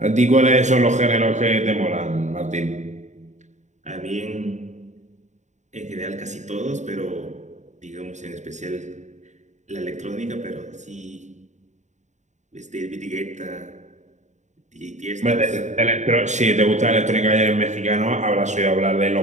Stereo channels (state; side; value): late; left; 0.34 ms